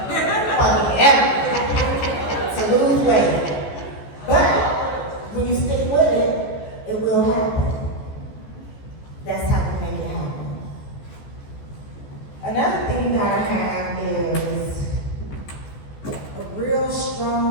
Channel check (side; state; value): right; late; 14 ms